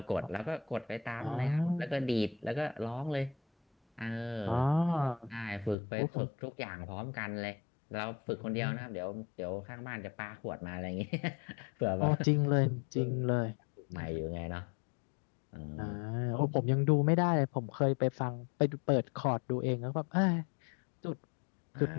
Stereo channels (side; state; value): right; drops out; at 5.8 s